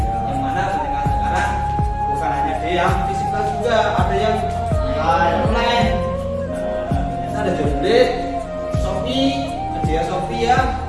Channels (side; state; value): both; identical; correlation 1.00